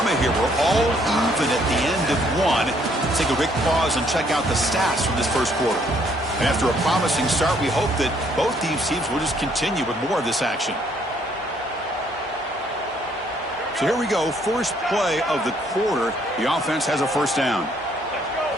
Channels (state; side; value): normal; both; correlation 0.66